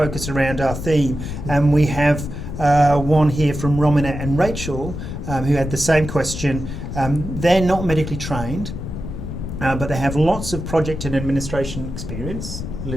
around our theme, and we have one here from Romina and Rachel who had the same question. They're not medically trained, but they have lots of project and administration experience, a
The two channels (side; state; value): left; noise; rumble, 7 dB below the sound